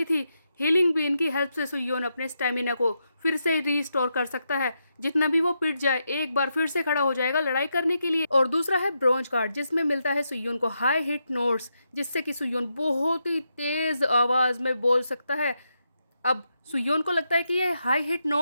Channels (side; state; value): both; inverted; correlation -0.83